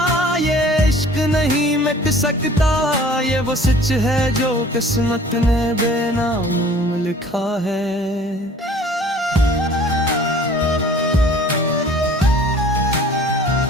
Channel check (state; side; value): normal; both; correlation 0.50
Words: ये इश्क नहीं मिट सकता, ये वो सच है जो किस्मत ने बेनाम लिखा है।